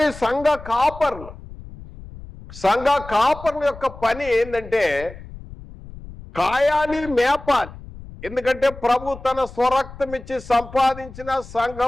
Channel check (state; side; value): noise; left; rumble, 16 dB below the sound